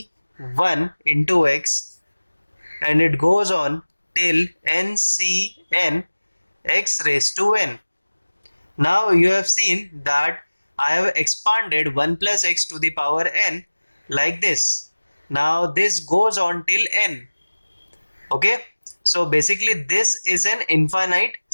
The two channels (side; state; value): both; inverted; correlation -1.00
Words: into x, and it goes on till ncn x raised to n. Now you have seen that I have expanded 1 plus x to the power n like this. Now this goes on till n. Okay, so basically this is an infinite